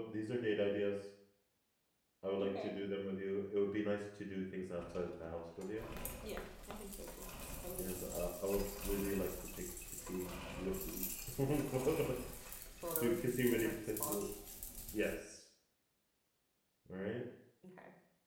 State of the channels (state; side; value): identical; both; correlation 1.00